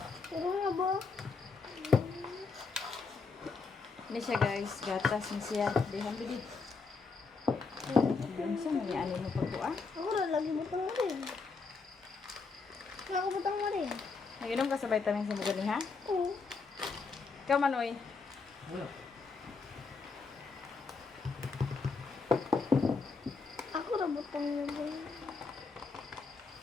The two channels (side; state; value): right; quieter; 4.5 dB